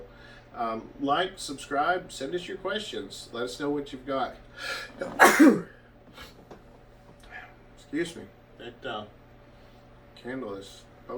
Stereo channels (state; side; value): identical; both; correlation 1.00